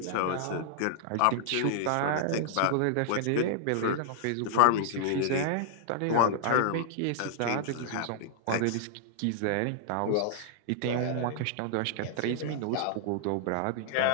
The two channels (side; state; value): both; different; correlation -0.01